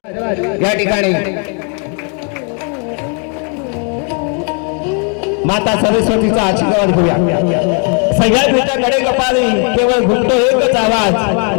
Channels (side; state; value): right; quieter; 39.6 dB